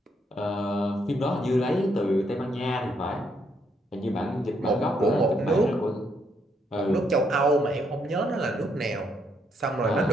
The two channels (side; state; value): both; normal; correlation 0.74